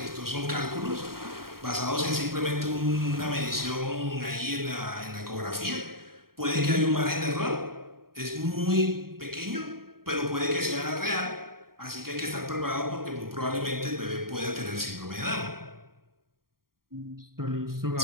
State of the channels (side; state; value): left; late; 0.93 ms